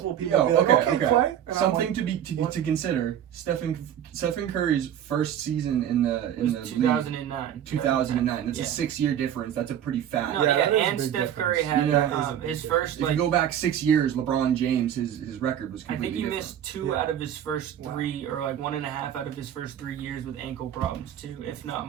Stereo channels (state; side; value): quieter; left; 10.1 dB